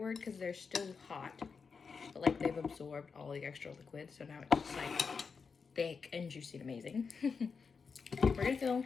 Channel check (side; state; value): right; quieter; 5.4 dB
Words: because they're still hot. But like they've absorbed all the extra liquid. So now it's just like thick and juicy and amazing. We're gonna fill